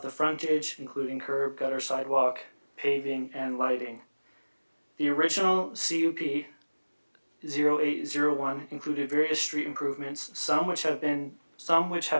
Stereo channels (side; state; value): both; inverted; correlation -1.00